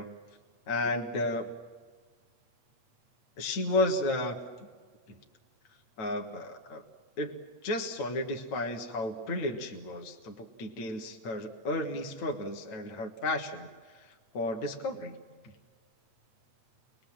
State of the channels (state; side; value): late; right; 9.1 ms